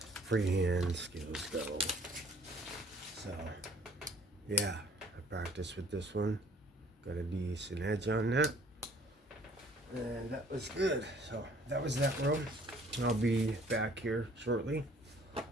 freehand skills go. So, yeah, I practiced with this one. Got a decent edge on that. And that was good. So, that was that row. I'll be back here shortly.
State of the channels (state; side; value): normal; both; correlation 0.56